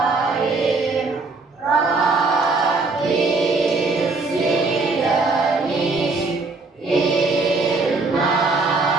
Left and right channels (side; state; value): left; quieter; 3.7 dB